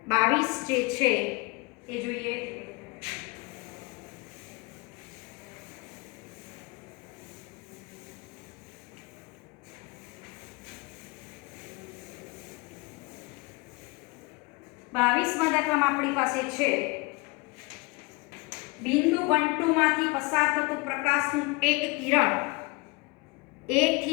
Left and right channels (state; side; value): quieter; right; 26.7 dB